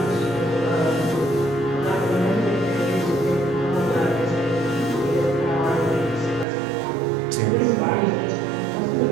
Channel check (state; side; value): drops out; left; at 6.5 s